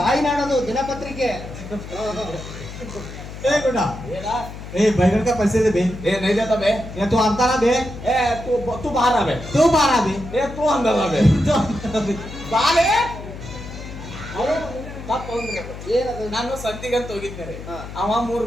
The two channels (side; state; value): left; noise; hum, 12 dB below the sound